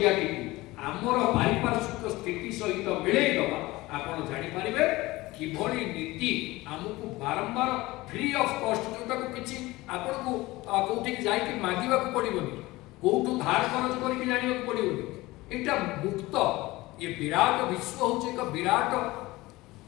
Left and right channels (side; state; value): right; quieter; 19.9 dB